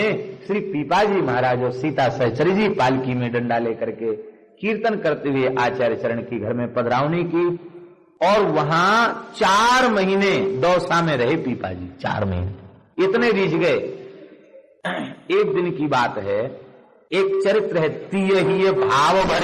श्री पीपा जी महाराज और सीता सहचरी जी पालकी में डंडा लेकर के कीर्तन करते हुए आचार्य चरण की घर में पधरावनी की। और वहां 4 महीने दौसा में रहे पीपा जी, 4 महीने इतने रीझ गए। एक दिन की बात है, एक चरित्र है, तीय ही भाव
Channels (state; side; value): identical; both; correlation 1.00